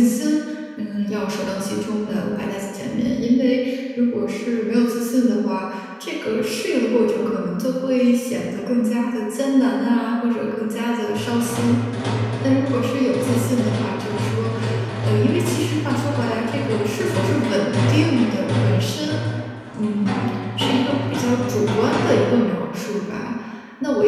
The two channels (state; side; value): identical; both; correlation 1.00